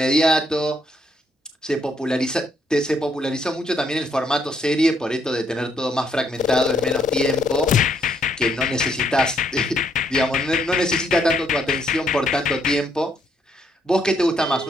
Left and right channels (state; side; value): normal; both; correlation 0.72